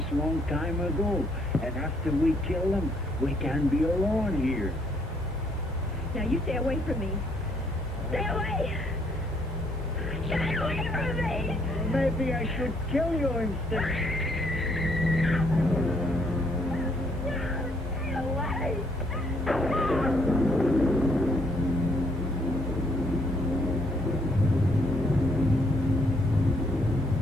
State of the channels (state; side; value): normal; both; correlation 0.69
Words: long time ago. And after we kill them, we can be alone here. Now, you stay away from me. Stay away! Stay away from me! Maybe I should kill you instead. Stay away!